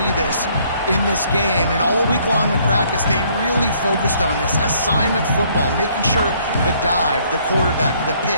this in this game, and all week long in practice, they really focused on this assignment football, making sure the dive, the quarterback, the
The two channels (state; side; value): inverted; both; correlation -0.64